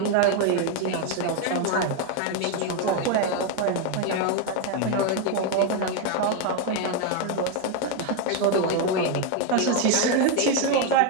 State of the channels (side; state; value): both; different; correlation 0.01